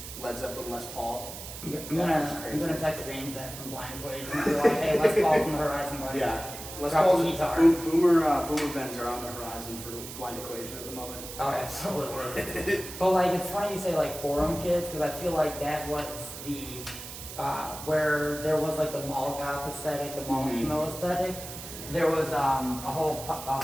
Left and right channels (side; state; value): right; noise; hiss, 11 dB below the sound